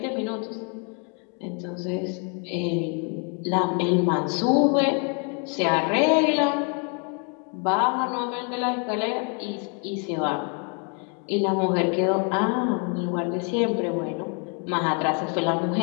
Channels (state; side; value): quieter; right; 38.0 dB